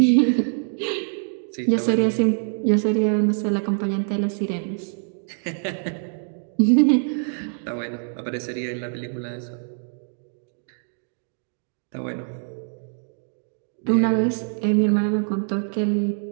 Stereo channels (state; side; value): silent; left; digital silence